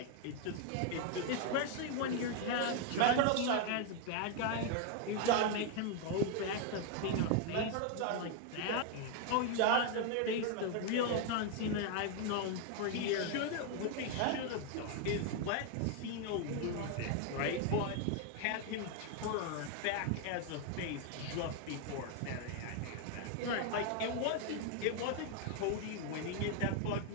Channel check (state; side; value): different; both; correlation 0.01